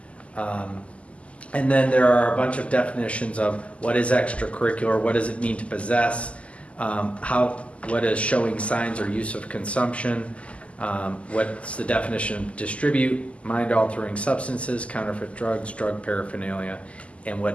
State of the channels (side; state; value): right; late; 0.060 ms